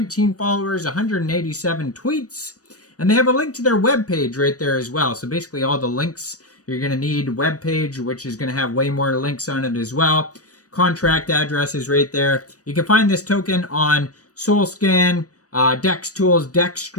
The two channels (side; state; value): right; late; 0.67 ms